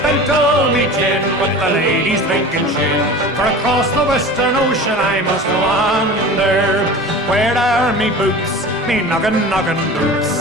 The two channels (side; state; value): both; normal; correlation 0.36